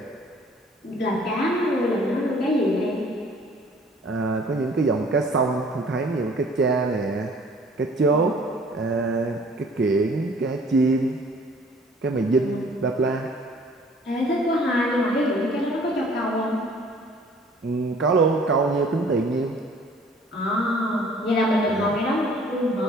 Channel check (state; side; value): normal; both; correlation 0.54